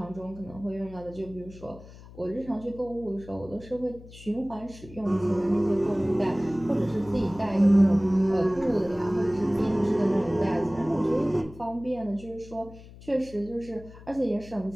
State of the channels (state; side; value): noise; left; hum, 18 dB below the sound